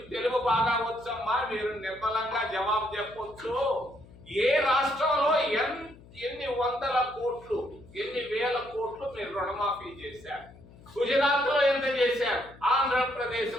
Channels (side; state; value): left; noise; hum, 22 dB below the sound